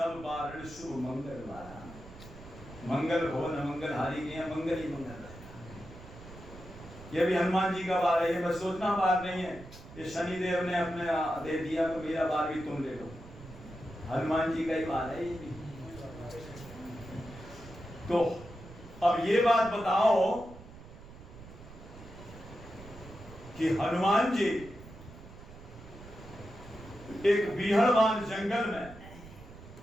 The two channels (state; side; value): noise; right; rumble, 16 dB below the sound